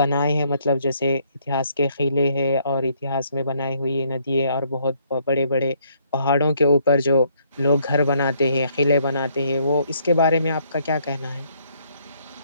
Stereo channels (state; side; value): inverted; both; correlation -0.68